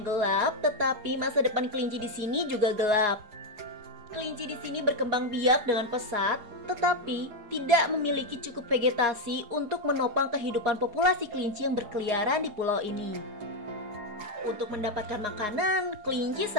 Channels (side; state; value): left; late; 4.8 ms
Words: gelap, tetapi masa depan kelinci di sini juga gelap. Kelinci di sini berkembang biak dengan pesat, tetapi tidak memiliki cukup vegetasi untuk menopang kehidupan populasi kelinci yang berkeliaran di pulau ini. Untuk mendapatkan makanan, kelinci